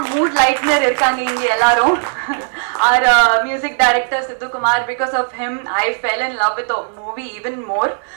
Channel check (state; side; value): silent; left; digital silence